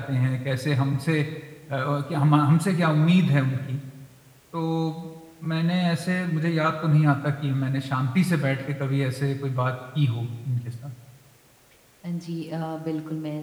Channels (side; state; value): both; identical; correlation 1.00